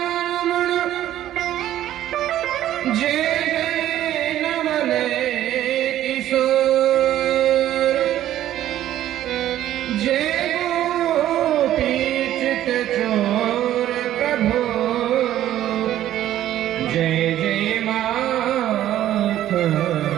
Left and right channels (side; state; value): left; quieter; 12.6 dB